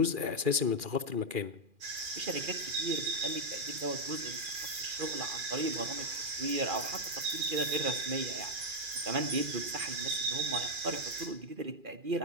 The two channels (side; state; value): left; late; 2.4 ms